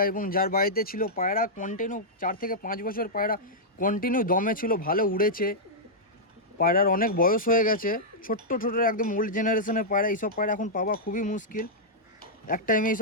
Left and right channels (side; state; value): both; normal; correlation -0.09